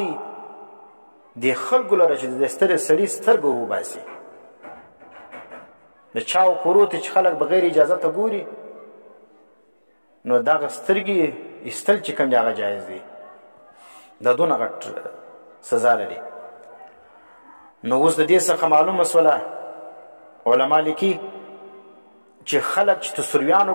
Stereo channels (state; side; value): inverted; both; correlation -1.00